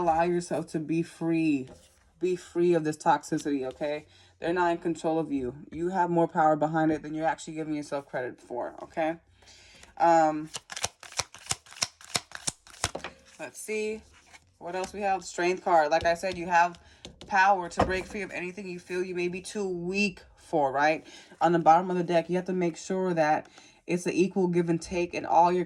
yourself to be free of this toxicity. Okay, they're not in control of you. You have more power behind it than you're actually giving yourself credit for. Okay. um Let's see what else we have. Strength card. Like I said, you have power to break free of anything you feel you may be too weak for, right? On the bottom of the deck, you have to make sure that it's an equal give and take in all your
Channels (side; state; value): both; identical; correlation 1.00